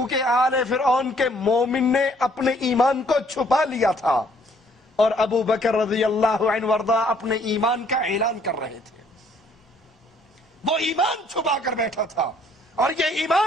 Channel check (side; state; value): both; normal; correlation 0.63